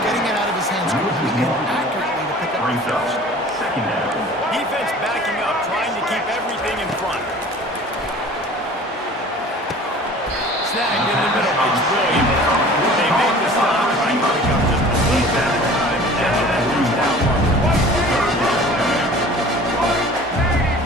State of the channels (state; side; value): normal; both; correlation 0.45